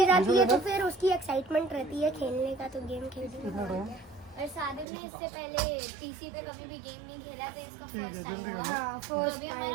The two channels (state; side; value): drops out; left; at 4.9 s